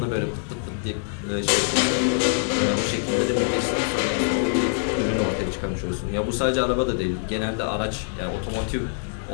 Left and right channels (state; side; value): silent; right; 60 dB below the other